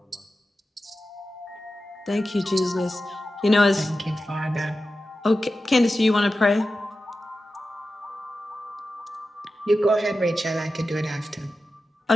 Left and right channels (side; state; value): both; normal; correlation 0.92